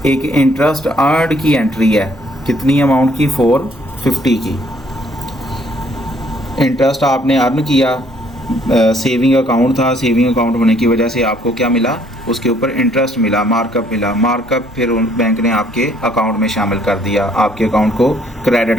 एक इंटरेस्ट अर्नड की एंट्री है, कितनी अमाउंट की, 450 की। इंटरेस्ट आपने अर्न किया, सेविंग अकाउंट था, सेविंग अकाउंट होने की वजह से आपको क्या मिला, उसके ऊपर इंटरेस्ट मिला, मार्कअप मिला। मार्कअप फिर बैंक ने आपके अकाउंट में शामिल कर दिया, आपके अकाउंट को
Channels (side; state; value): both; normal; correlation 0.64